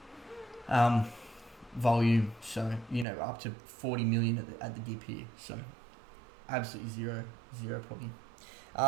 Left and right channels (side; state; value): left; drops out; at 3.1 s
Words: volume, so up to 40 million at the dip here. So absolutely zero problem.